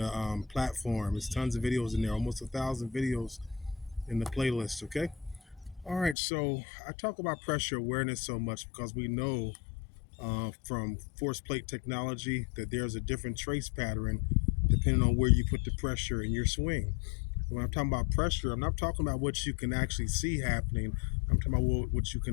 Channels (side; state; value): right; drops out; at 6.2 s